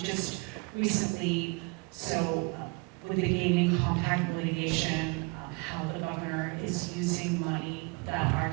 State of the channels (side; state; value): left; quieter; 29.6 dB